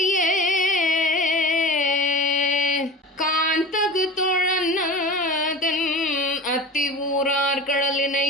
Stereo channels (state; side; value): normal; both; correlation 0.34